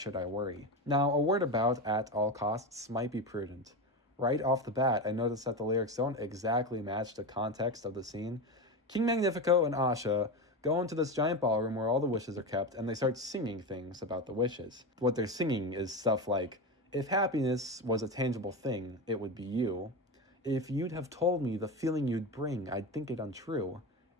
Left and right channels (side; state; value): both; normal; correlation 0.19